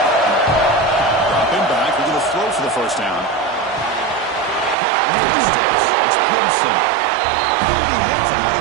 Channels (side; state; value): left; drops out; at 4.8 s